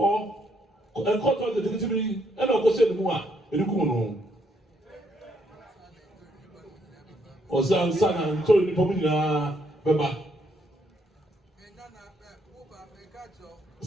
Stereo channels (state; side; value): normal; both; correlation 0.72